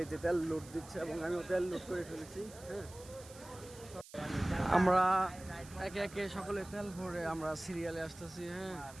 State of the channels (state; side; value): noise; right; hiss, 19 dB below the sound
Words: তেল লোড দিচ্ছে এবং আমিও তেল লোড করে ফেলেছি। হ্যাঁ, আমরা একে একে সকলে তেল ভরে আমরা সিরিয়ালে আসতেছি। হ্যাঁ,